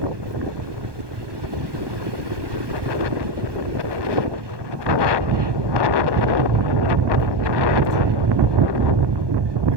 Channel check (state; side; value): late; left; 1.2 ms